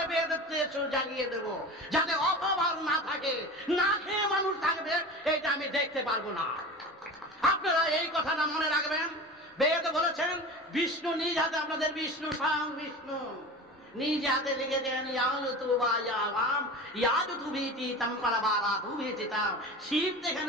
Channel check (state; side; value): normal; both; correlation 0.32